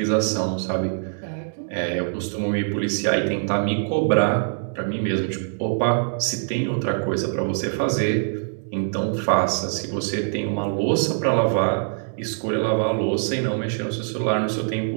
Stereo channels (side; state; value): left; silent; digital silence